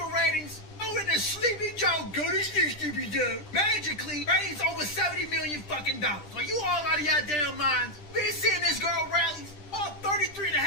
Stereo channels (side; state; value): right; late; 10 ms